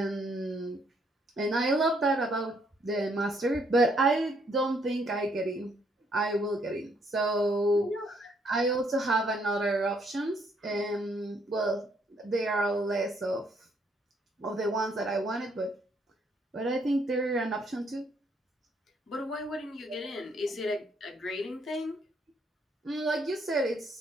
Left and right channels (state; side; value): normal; both; correlation 0.70